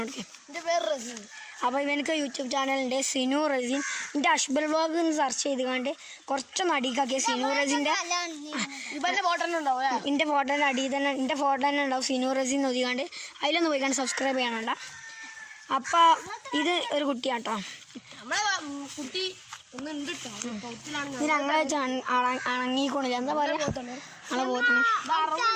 കൊടുക്കുക? എൻ്റെ പേര് റസീൻ. അപ്പോൾ ഇവനക്ക് യൂട്യൂബ് ചാനലുണ്ട്, സിനു റസീൻ. എൻ്റെ അഷ്ബൽ വ്ളോഗ് എന്ന് സെർച്ച് ചെയ്ത് കണ്ട് കുറച്ചൊന്ന് അടിക്കാക്കിയ സിനു റസീൻ്റെ എൻ്റെ ഫോട്ടോൻ്റെ അടിയിൽ തന്നെ എൻ്റെ ഫോട്ടോ തന്നെ ഉണ്ടാവും സിനു റസീൻ ഒതുക്കാണ്ട്. അതിലൊന്ന് പോയിക്കാണ്ട് സബ്സ്ക്രൈബ് ചെയ്യണണ്ട. അപ്പോൾ ഇത് ഒരു കുട്ടിയാട്ടോ. കുട്ടി ഇത് ഞങ്ങളെ അണങ്ങിക്കൊണ്ടില്ല, എന്താ പറയുക, ഞങ്ങളെ പോത്തിന്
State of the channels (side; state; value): both; identical; correlation 1.00